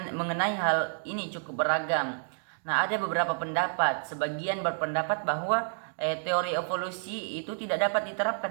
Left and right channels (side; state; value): left; silent; digital silence